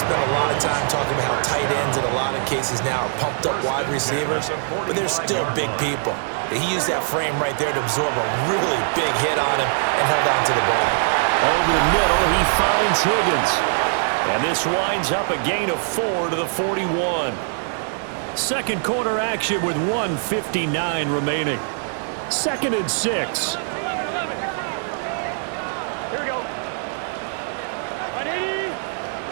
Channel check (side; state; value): left; silent; digital silence